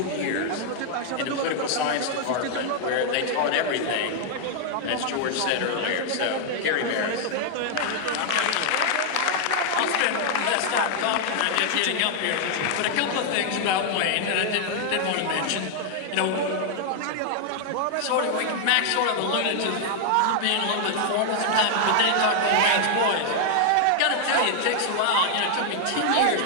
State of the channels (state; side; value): different; both; correlation 0.00